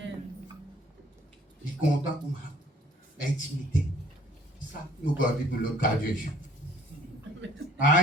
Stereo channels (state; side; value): normal; both; correlation 0.58